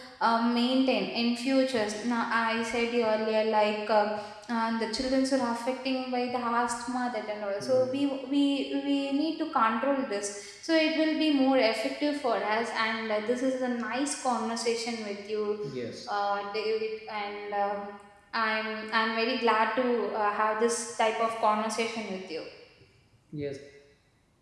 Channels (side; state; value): both; identical; correlation 1.00